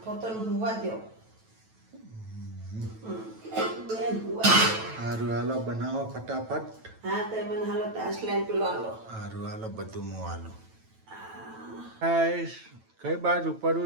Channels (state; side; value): late; left; 9.1 ms